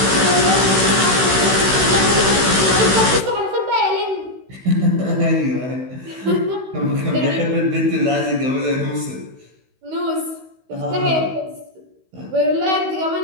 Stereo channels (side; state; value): left; late; 16 ms